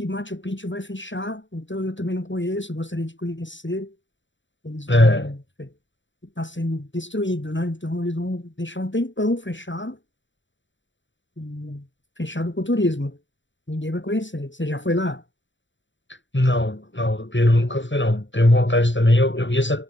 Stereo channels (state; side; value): late; right; 0.54 ms